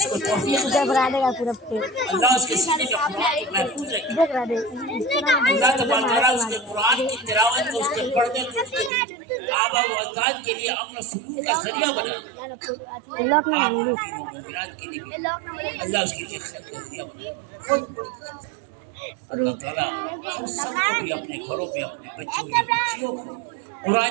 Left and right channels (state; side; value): drops out; left; at 8.9 s